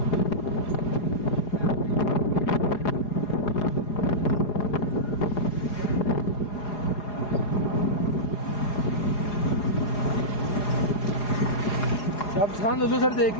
अब खान लुलुसर देख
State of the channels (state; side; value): late; right; 4.8 ms